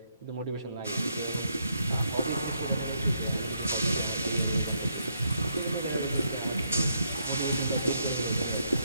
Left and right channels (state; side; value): inverted; both; correlation -0.76